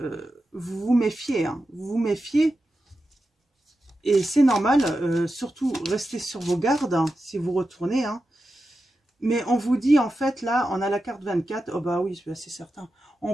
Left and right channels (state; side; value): normal; both; correlation 0.91